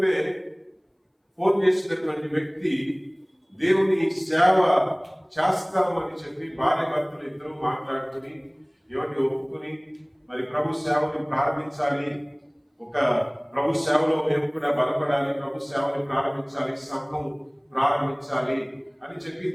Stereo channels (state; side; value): identical; both; correlation 1.00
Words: ఫోన్ చేసినటువంటి వ్యక్తి దేవుని సేవ చేస్తామని చెప్పి భార్య భర్తలు ఇద్దరు మాట్లాడుకుని ఎవరిని ఒప్పుకుని మరి ప్రభు సేవని ప్రారంభించాలి, ఒక ప్రభు సేవలో మేము కూడా బలపడాలి, ప్రభు సేవని ప్రారంభించాలి, సంఘం ప్రారంభించాలి అని చెప్పి